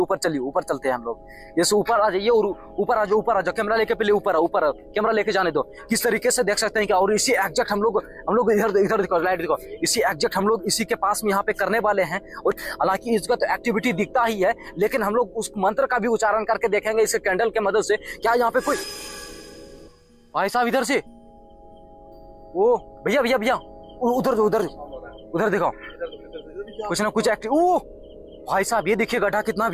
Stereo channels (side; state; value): both; identical; correlation 1.00